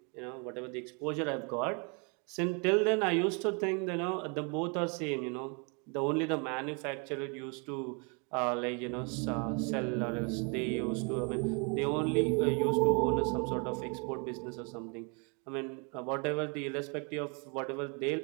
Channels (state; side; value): quieter; left; 34.6 dB